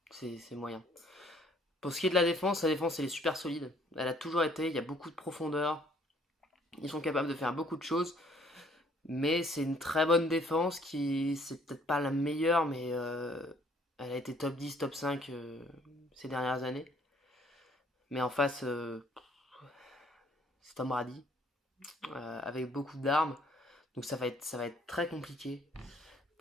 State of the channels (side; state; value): both; normal; correlation 0.61